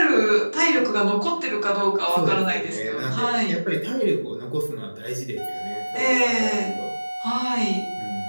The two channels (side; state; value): both; inverted; correlation -1.00